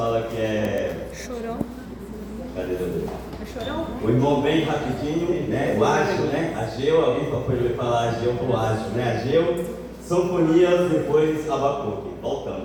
que é... Chorão. Cadê ele? É chorão? O irmão bem rapidinho, né? O Ágio, né? Ageu, alguém pode falar Ageu pro Ágio, né? Ageu, Sofonias, depois Abacuque.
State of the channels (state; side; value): identical; both; correlation 1.00